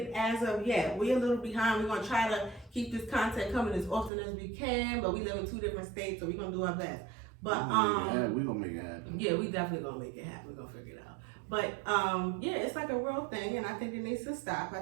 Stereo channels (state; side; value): drops out; left; at 4.1 s